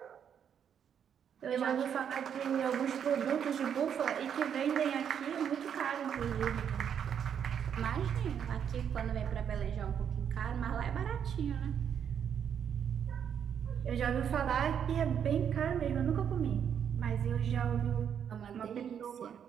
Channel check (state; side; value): quieter; left; 8.3 dB